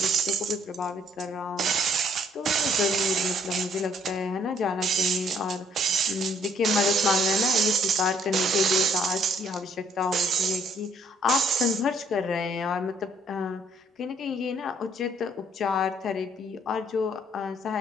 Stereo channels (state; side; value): normal; both; correlation 0.64